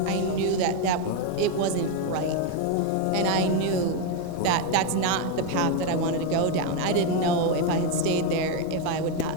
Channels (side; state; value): both; different; correlation 0.02